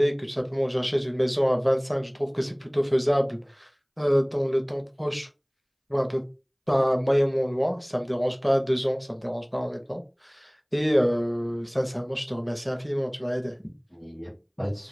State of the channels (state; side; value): identical; both; correlation 1.00